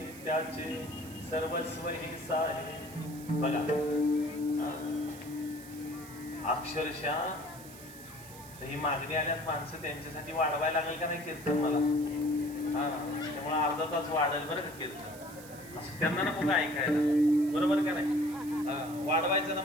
त्याचे सर्वस्व हे साहे. बघा, अक्षरशः ही मागणी आल्यात माणसं, त्यांच्यासाठी वाढवायला लागेल का नाही कीर्तन मला? त्यामुळे अर्धा तास वाढेल बरं का कीर्तन. असं त्यांना नको का ऐकायला? बरोबर का नाही? वाढवायचं ना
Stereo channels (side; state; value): right; noise; hiss, 18 dB below the sound